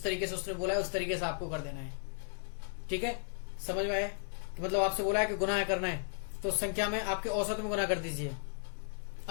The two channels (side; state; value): right; silent; 54 dB below the other